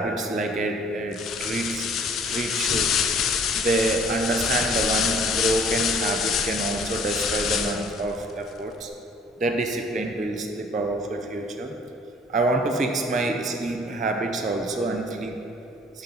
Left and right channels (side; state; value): both; normal; correlation 0.55